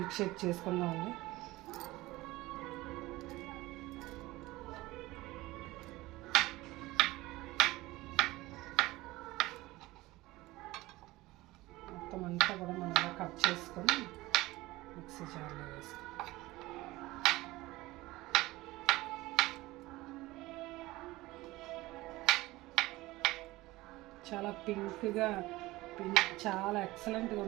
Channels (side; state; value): left; quieter; 19.2 dB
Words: షేక్ చేసుకుందామండి. మొత్తం అంతా కూడా మనం కట్ చేసుకొని మిక్సీ జార్లో వేసుకుంటాం. చాలా పింక్గా చాలా ఎక్సలెంట్గా